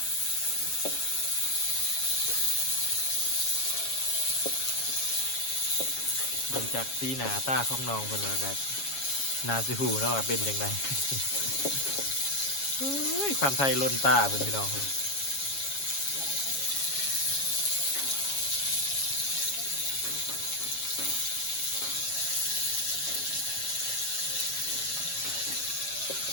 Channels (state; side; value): late; right; 7.3 ms